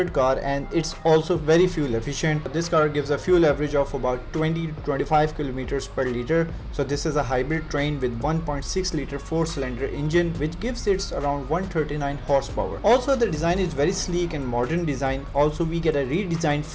car and it's also very fuel efficient. This car gives a fuel average of about 20 to 25 kilometers per liter. So this is a hybrid train with 1.6 liter 4-cylinder engine which gives it around 139 horsepower. Also, the design is very sleek and modern design. Also, we get a redesigned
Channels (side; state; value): both; identical; correlation 1.00